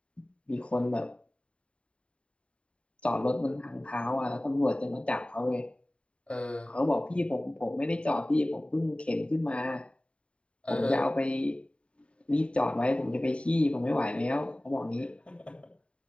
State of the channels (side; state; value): right; late; 0.059 ms